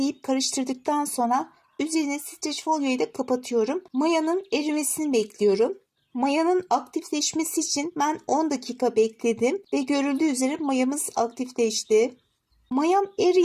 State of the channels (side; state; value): both; identical; correlation 1.00